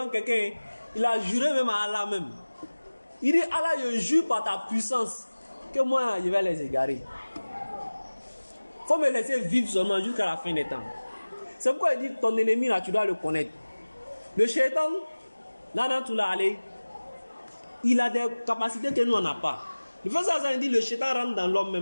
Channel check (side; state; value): both; inverted; correlation -1.00